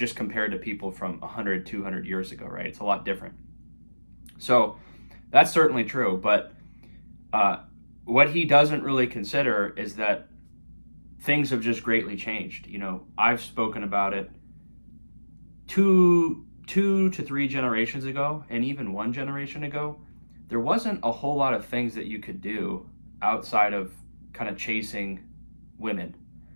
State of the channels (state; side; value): inverted; both; correlation -1.00